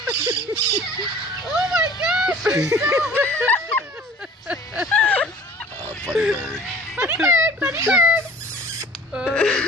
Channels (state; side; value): normal; both; correlation 0.47